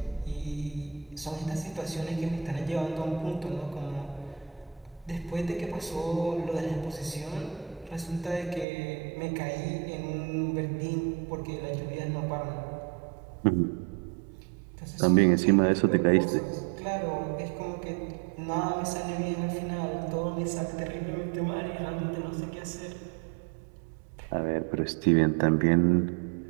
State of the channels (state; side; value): drops out; left; at 8.7 s